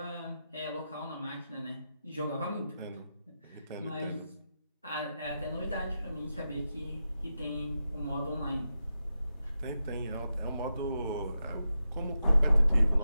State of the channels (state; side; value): inverted; both; correlation -0.89